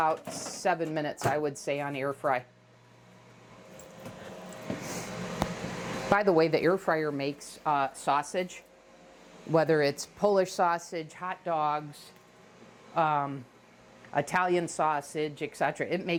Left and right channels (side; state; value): both; identical; correlation 1.00